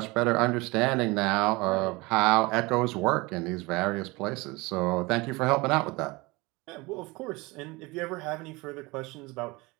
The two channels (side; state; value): left; quieter; 23.9 dB